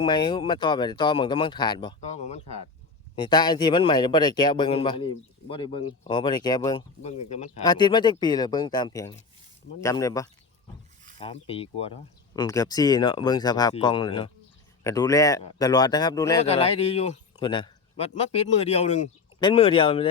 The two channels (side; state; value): right; quieter; 4.6 dB